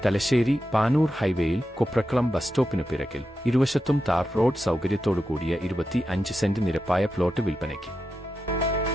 തലശ്ശേരി പാനൂർ ഹൈവേയിൽ കൊപ്രക്കളം ബസ് സ്റ്റോപ്പിനു പിറകിൽ ഇരുവശത്തും താർ റോഡ് സൗകര്യത്തോടുകൂടിയ 25 സെന്റ് നിരപ്പായ പ്ലോട്ട് വിൽപ്പനയ്ക്ക്.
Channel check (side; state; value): both; normal; correlation 0.89